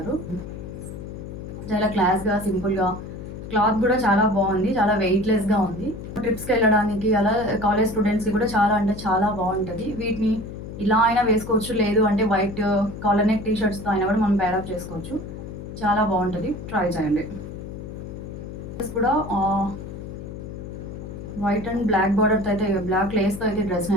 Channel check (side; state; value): left; noise; hum, 10 dB below the sound